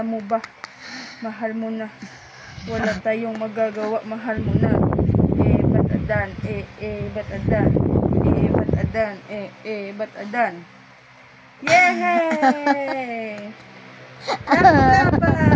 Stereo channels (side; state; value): both; identical; correlation 1.00